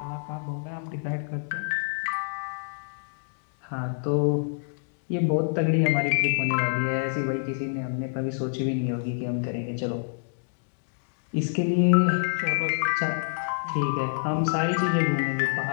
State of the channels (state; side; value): silent; right; digital silence